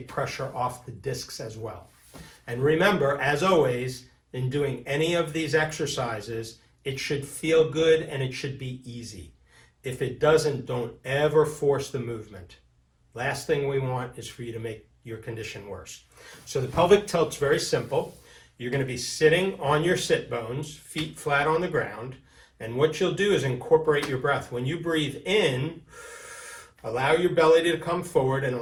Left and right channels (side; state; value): both; identical; correlation 1.00